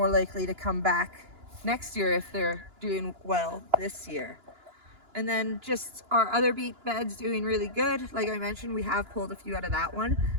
likely to come back next year if they're doing well this year. And then just our other beet beds doing really good. Like I mentioned, we have pulled a few out of that one.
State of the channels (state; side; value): late; left; 2.9 ms